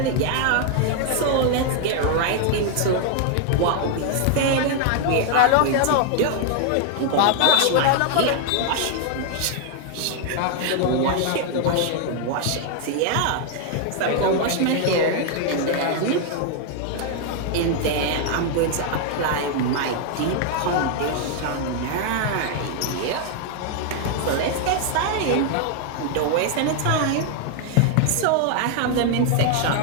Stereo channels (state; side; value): different; both; correlation 0.00